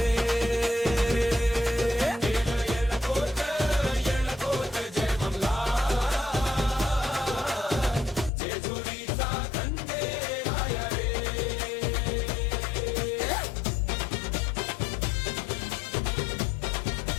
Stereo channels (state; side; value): drops out; right; at 8.3 s